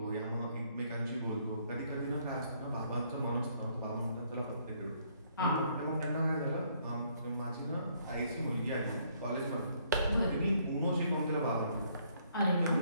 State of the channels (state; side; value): inverted; both; correlation -0.68